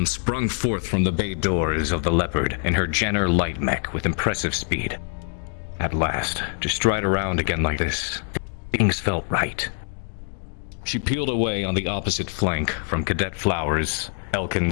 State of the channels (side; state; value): right; silent; 62 dB below the other